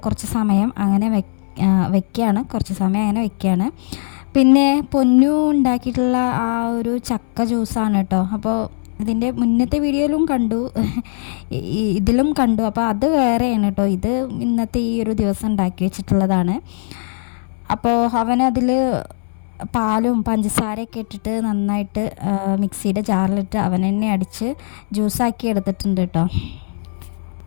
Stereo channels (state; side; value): silent; right; 67 dB below the other